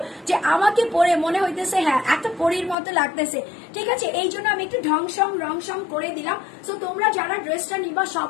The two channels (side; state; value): right; drops out; at 2.8 s